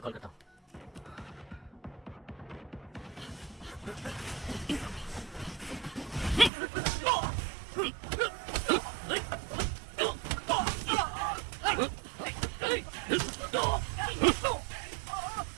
कॉल करता हूँ।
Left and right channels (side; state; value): left; drops out; at 6.5 s